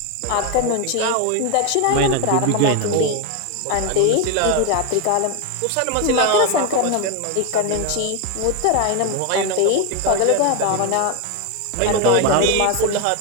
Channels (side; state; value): both; different; correlation 0.01